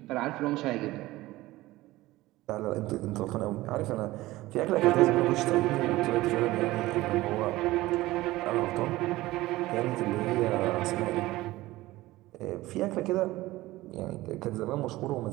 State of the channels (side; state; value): left; quieter; 18.0 dB